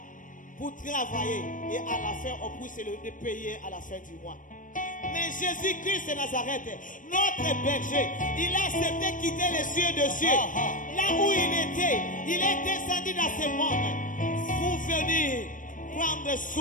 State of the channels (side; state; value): right; late; 0.38 ms